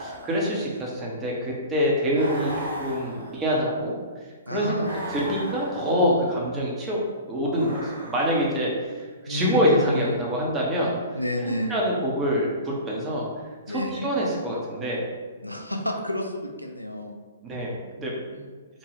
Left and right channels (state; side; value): inverted; both; correlation -0.33